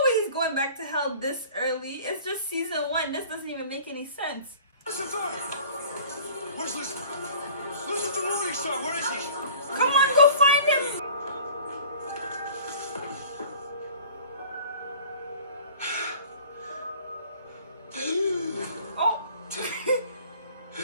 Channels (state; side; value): inverted; both; correlation -0.47